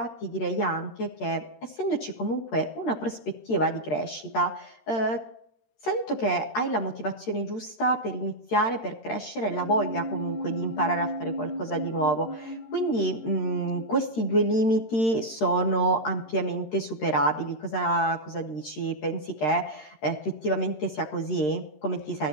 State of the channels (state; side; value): late; right; 13 ms